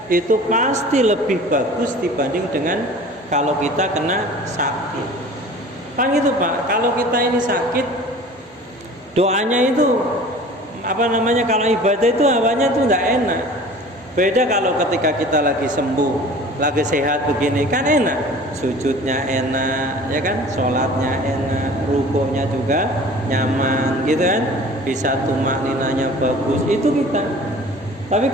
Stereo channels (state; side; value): normal; both; correlation 0.44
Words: itu pasti lebih bagus dibanding dengan kalau kita kena sakit. Kan gitu Pak, kalau kita ini sakit, doanya itu kalau ibadah itu awalnya itu tidak enak. Beda kalau ketika kita lagi sembuh, lagi sehat begini, kan enak, sujudnya enak, ya kan, sholatnya enak, rukuknya juga nyaman, gitu kan, bisa tumakninanya bagus, itu kita. Tapi